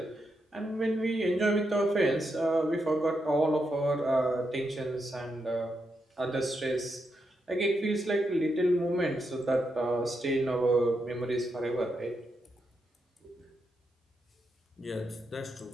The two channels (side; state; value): both; normal; correlation 0.83